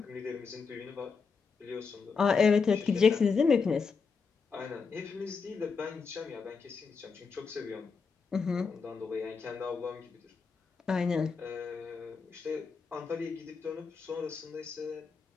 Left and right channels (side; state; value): right; quieter; 5.2 dB